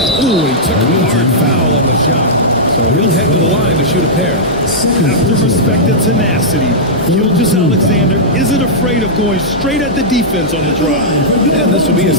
he took a hard foul on the shot. So he'll head to the line to shoot a pair. Have to respect the tenacity. Gilgeous-Alexander isn't afraid of going straight at the defense on the drive. And this will be his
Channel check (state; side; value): normal; both; correlation -0.11